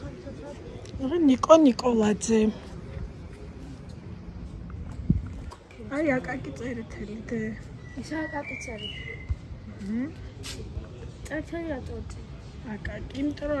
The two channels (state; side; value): identical; both; correlation 1.00